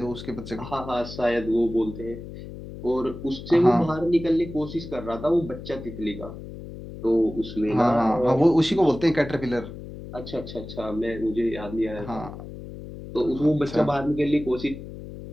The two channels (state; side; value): noise; left; hum, 12 dB below the sound